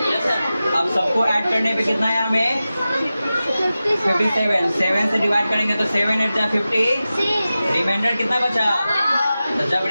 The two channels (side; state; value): both; inverted; correlation -0.94